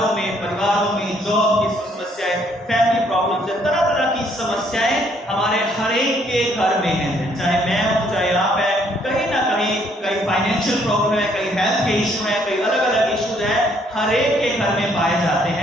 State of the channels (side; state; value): both; normal; correlation 0.67